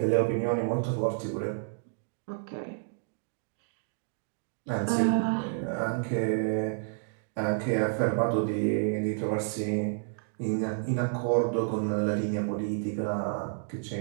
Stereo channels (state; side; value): silent; left; digital silence